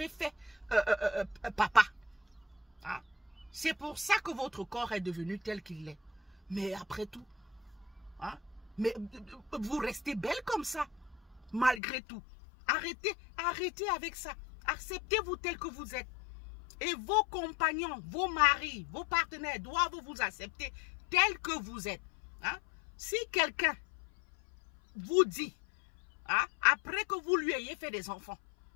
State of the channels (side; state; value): right; drops out; at 11.8 s